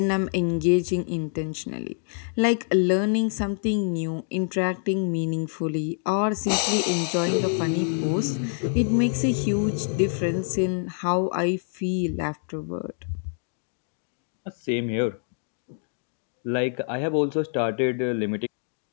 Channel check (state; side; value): silent; right; digital silence